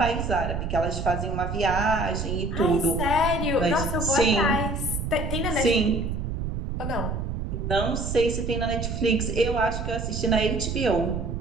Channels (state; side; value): noise; right; rumble, 3 dB below the sound